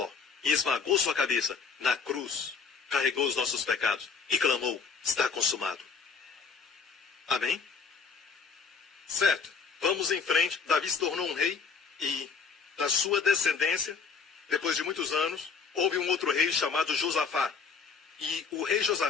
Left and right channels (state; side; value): quieter; right; 5.6 dB